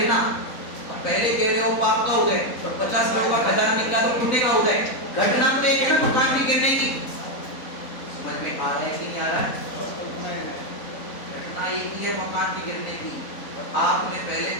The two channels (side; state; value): right; late; 4.0 ms